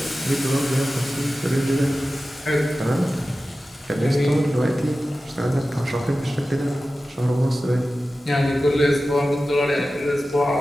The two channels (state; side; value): normal; both; correlation 0.95